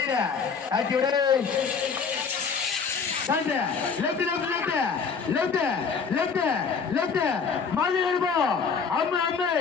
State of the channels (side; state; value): right; quieter; 5.7 dB